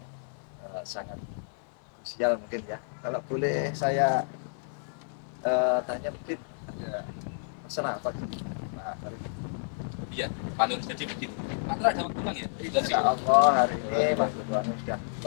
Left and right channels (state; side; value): silent; right; 58 dB below the other